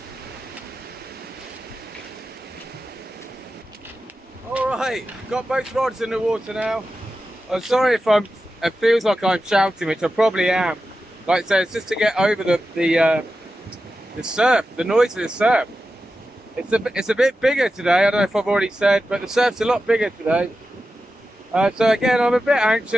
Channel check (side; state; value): both; normal; correlation 0.92